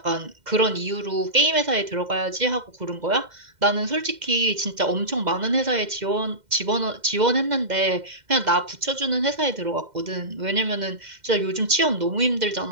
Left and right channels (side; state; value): left; late; 2.1 ms